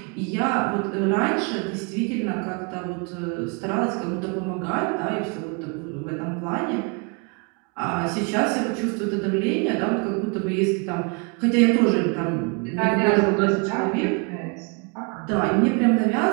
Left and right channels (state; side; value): quieter; left; 32.4 dB